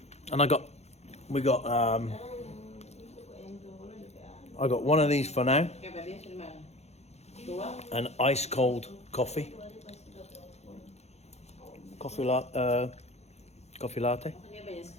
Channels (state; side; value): late; right; 0.31 ms